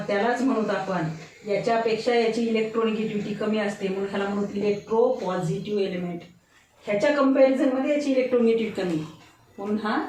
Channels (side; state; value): both; identical; correlation 1.00